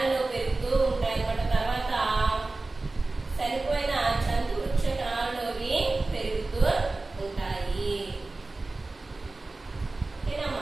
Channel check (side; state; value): left; quieter; 3.3 dB